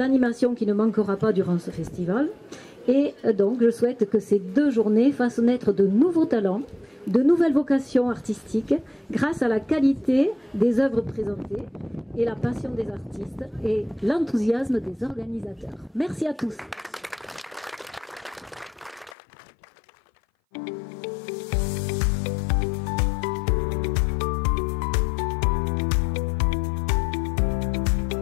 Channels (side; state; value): right; drops out; at 19.2 s